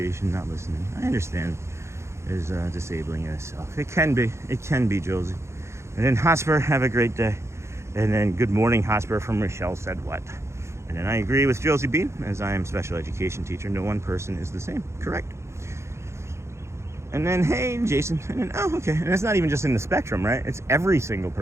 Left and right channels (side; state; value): left; late; 0.13 ms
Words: not listening, I understand, is disabling in itself. It can be, Josie. And then Hotspur, have a great day. And then good morning, Hotspur, from Michelle said what? And then I agree with Josie Bean, as I am special education teacher. No one person is the same. Correct. And then, hey, Jason. And then, oh, okay. And it's not even just in the spectrum, right? It's every single